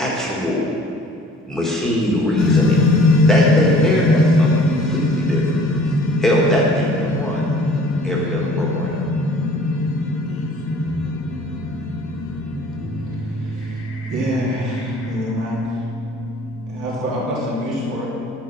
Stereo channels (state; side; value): normal; both; correlation 0.51